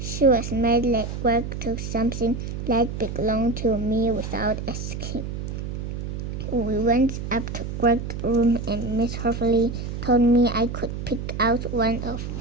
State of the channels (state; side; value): noise; right; hum, 6 dB below the sound